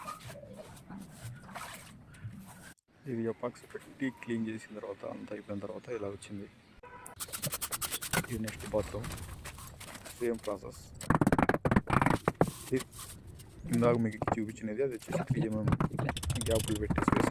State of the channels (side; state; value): both; identical; correlation 1.00